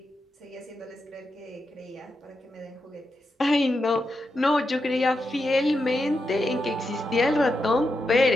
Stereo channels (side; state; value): both; normal; correlation 0.86